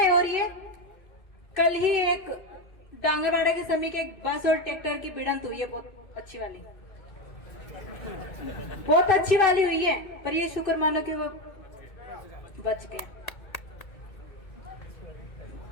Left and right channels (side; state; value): right; late; 2.6 ms